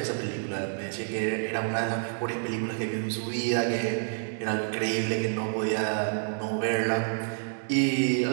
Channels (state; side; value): silent; left; digital silence